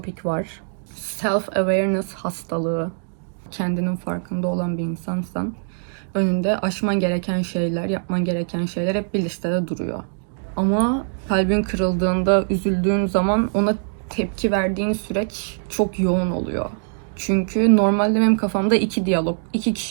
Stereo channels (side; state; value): left; silent; digital silence